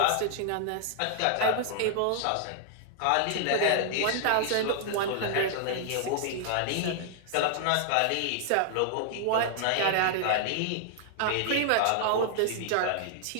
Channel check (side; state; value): both; different; correlation -0.01